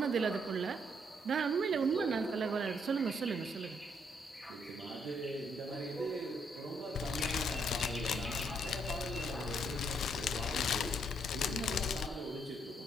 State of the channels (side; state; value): both; normal; correlation 0.72